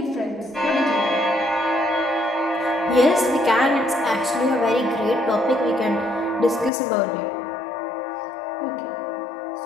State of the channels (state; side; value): drops out; right; at 6.7 s